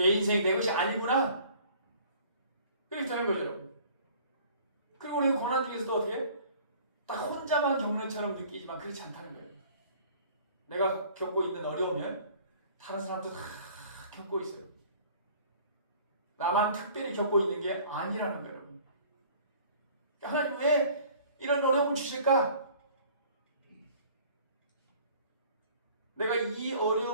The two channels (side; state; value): both; inverted; correlation -0.51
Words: 인생이 내 것이 아니구나. 그렇게 되는 거죠, 여러분. 그리고 우리가 고난 중에서도 어떻게? 딱 혼자만 겪는 처럼 느끼지만 그렇지 않다는 거예요. 내가 겪고 있는 어려우면 다른 사람도 다 겪고 있어요. 나만 특별히 겪고 있는 게 아니라는 거예요, 여러분. 하나님 왜 이런 어려움을 주실까? 내가 이